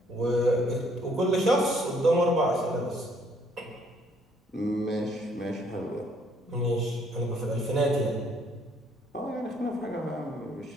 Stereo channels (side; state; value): both; normal; correlation 0.65